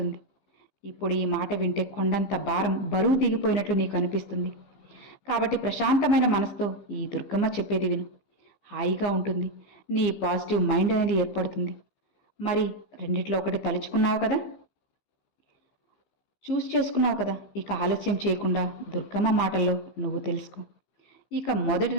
ఇప్పుడు ఈ మాట వింటే కొండంత భారం, బరువు దిగిపోయినట్లు నీకు అనిపిస్తుంది. కాబట్టి ప్రశాంతమైన మనసుతో ఈ దుర్గమ్మ చెప్పేది విను. హాయిగా ఉంటుంది, నీ పాజిటివ్ మైండ్ అనేది ఏర్పడుతుంది. మరి రెండిట్లో ఒకటి తలుచుకున్నావు కదా. చూస్ చేసుకున్నావు కదా, ఇక ఆలస్యం చేయకుండా దుర్గమ్మ మాటల్లో నువ్వు తెలుసుకో. ఇక మొదటి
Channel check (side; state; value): right; late; 15 ms